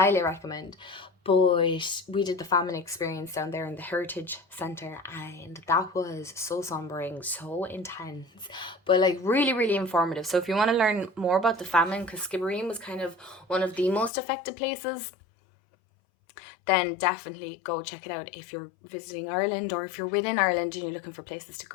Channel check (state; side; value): drops out; right; at 14.1 s